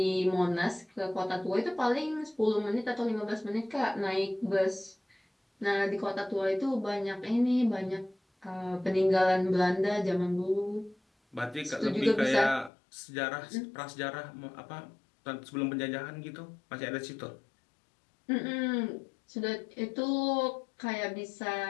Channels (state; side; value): drops out; right; at 12.7 s